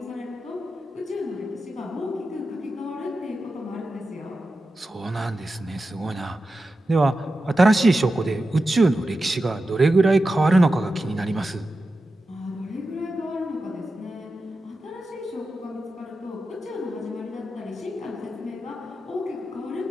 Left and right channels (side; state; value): both; normal; correlation 0.91